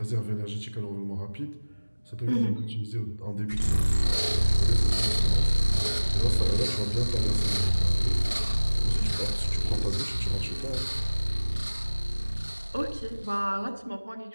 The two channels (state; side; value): inverted; both; correlation -1.00